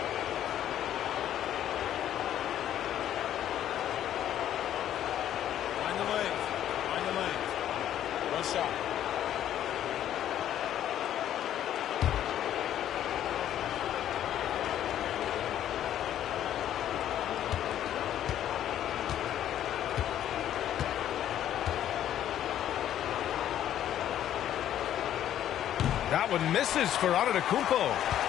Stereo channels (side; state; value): right; quieter; 11.2 dB